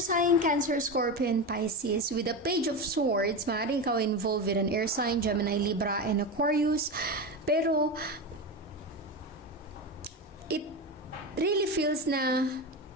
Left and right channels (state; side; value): normal; both; correlation 0.19